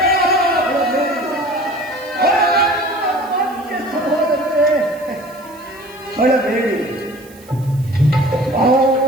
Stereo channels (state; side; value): noise; right; hiss, 24 dB below the sound